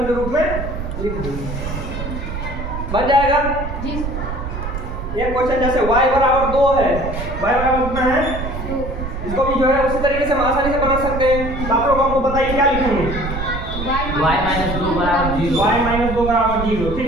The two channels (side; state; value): right; noise; rumble, 6 dB below the sound